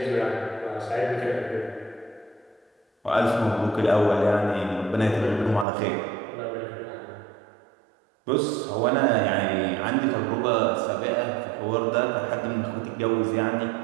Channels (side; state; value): left; drops out; at 5.7 s